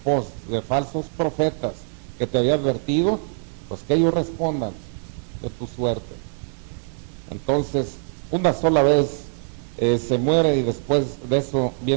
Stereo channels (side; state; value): left; silent; digital silence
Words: de falsos profetas que te había advertido, pues que ellos respondan de tu suerte. Entonces, una sola vez se muere y después de eso